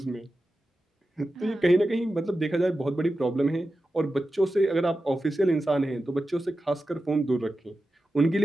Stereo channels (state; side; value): normal; both; correlation 0.93